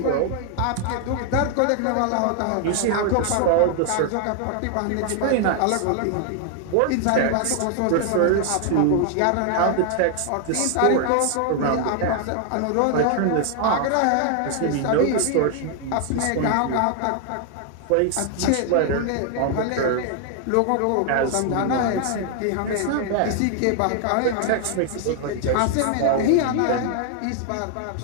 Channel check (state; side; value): different; both; correlation 0.00